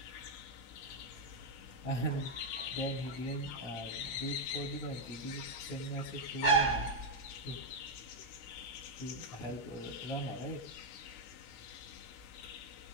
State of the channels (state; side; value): late; right; 16 ms